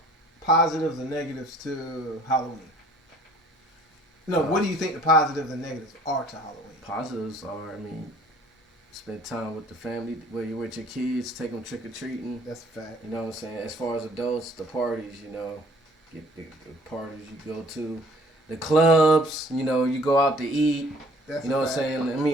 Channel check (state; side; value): normal; both; correlation 0.55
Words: positives and negatives to Halloween? No, what do you think the positives and negatives are to Halloween? Positives are, spend time with the family, where you're with your kids, take them trick-or-treating. That's a fact. You know what I'm saying? As far as adults, the parties, get the parties you go to. The clubs, you go out to eat. That's what I'm